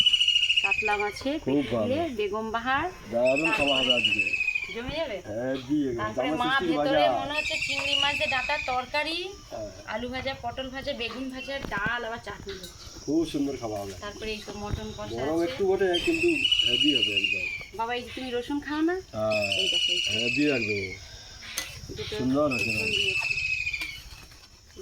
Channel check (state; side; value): identical; both; correlation 1.00